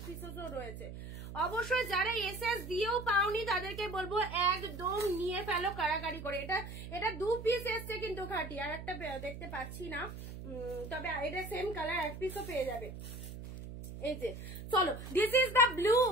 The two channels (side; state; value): right; noise; hum, 10 dB below the sound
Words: পিসও রয়েছে। অবশ্যই যারা এসএস দিয়েও পাওনি তাদেরকে বলবো একদম নিয়ে ফেলো কারাকারি করে। এটা 2 পিস এসছে কিন্তু খাড্ডি, আর একটা দেখতে পাচ্ছি না, তবে এটা সেম কালার, এক পিসও পেয়ে যাবে। এই যে চলো, দিস ইজ দ্য